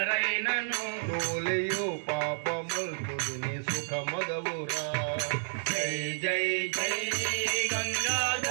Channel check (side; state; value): left; silent; 57 dB below the other